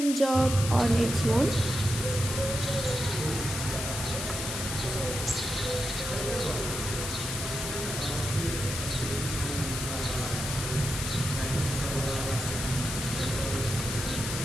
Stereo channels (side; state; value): left; noise; hiss, 5 dB below the sound